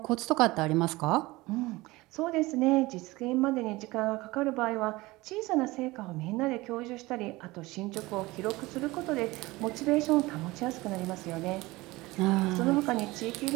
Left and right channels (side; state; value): left; quieter; 20.7 dB